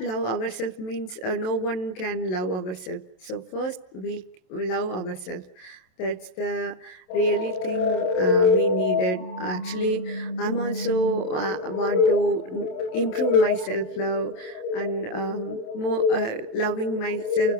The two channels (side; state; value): right; late; 27 ms